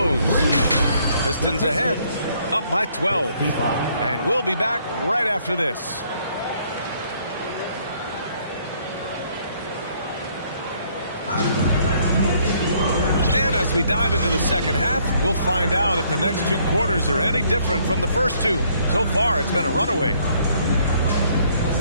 Pistons ahead, up by 12. And we'll be back right after this. And as we dive into the second half, we'll find out if the next two quarters are any different from the first two. So far, it's been a runaway.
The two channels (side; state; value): both; inverted; correlation -0.65